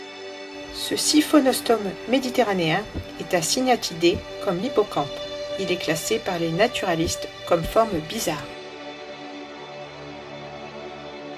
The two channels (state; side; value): identical; both; correlation 1.00